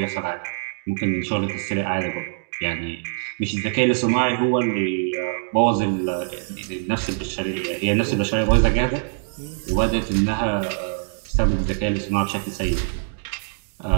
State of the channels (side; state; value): left; silent; digital silence